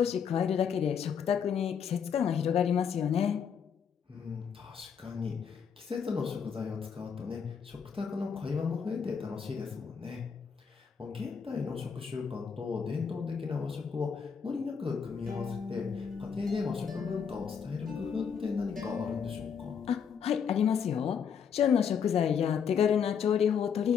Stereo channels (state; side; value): quieter; right; 7.0 dB